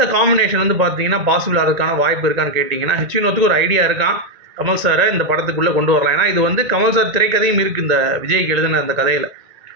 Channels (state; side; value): late; left; 1.9 ms